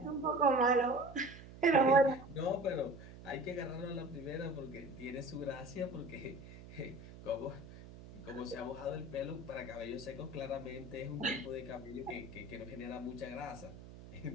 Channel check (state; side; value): noise; right; hum, 15 dB below the sound